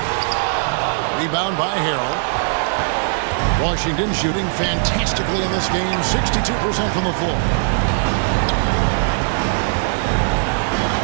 Rebound by Harrell. Washington shooting fantastically in this game, 62% from the floor.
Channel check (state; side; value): silent; left; 66 dB below the other